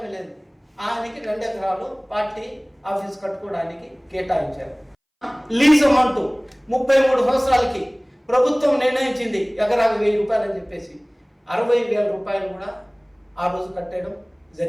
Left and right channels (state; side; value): identical; both; correlation 1.00